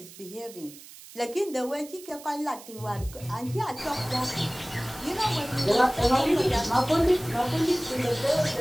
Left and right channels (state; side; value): noise; right; hiss, 18 dB below the sound